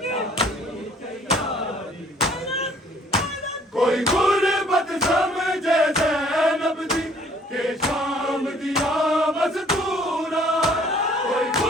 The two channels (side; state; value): both; normal; correlation 0.59